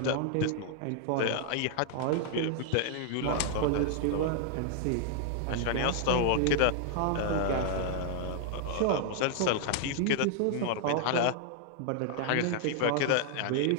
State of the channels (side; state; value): both; different; correlation -0.01